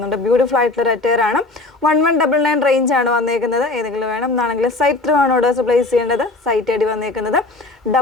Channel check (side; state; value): right; quieter; 3.1 dB